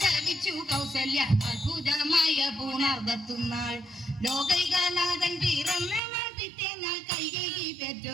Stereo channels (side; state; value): left; drops out; at 6.0 s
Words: കൗസല്യ, അത്ഭുതമായ പുണർവത്തുന്നാൾ. ലോകൈകനാഥൻ പിറന്ന പിറ്റേന്നാൾ കൈകേയി